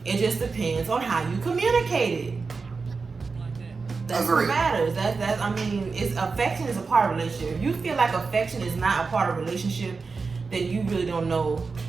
It just depends on how you communicate it. That's what matters. Affection is a part of a relationship. If you feel like affection is not a part of a relationship, then you really don't know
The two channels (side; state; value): left; quieter; 4.5 dB